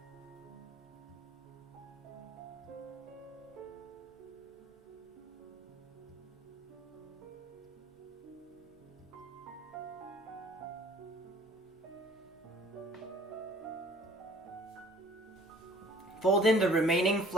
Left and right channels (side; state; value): both; normal; correlation 0.53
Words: Fold in the remaining